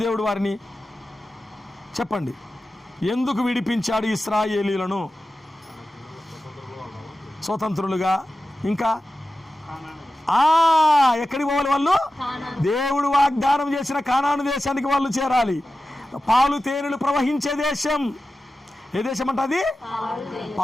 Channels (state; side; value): normal; both; correlation 0.93